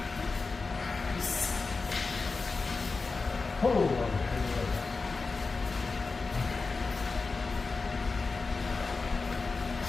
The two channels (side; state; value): right; quieter; 4.1 dB